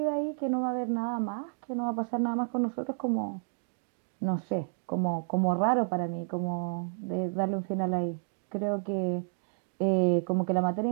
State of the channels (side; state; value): left; silent; digital silence